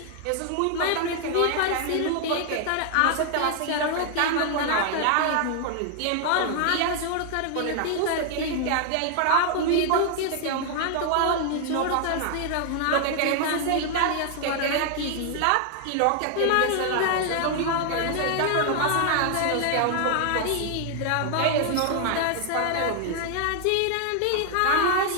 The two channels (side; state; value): both; different; correlation 0.00